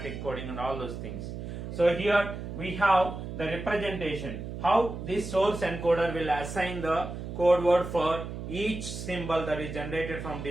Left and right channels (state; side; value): noise; right; hum, 8 dB below the sound